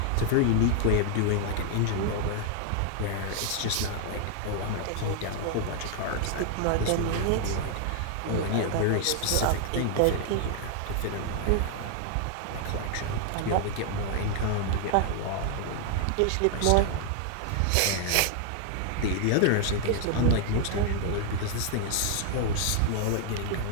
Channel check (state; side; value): different; both; correlation 0.00